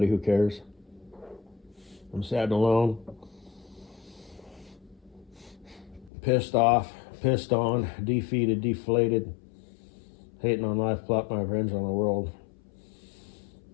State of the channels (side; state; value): right; drops out; at 6.1 s